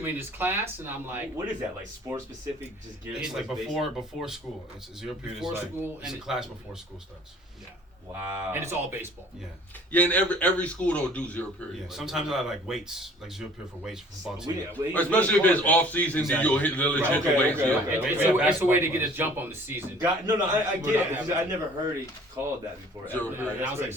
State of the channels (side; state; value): both; normal; correlation 0.53